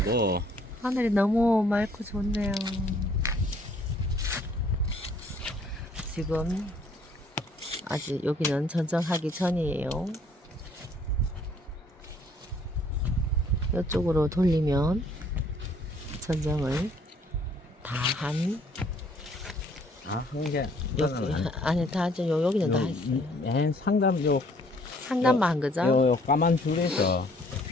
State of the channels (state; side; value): normal; both; correlation 0.61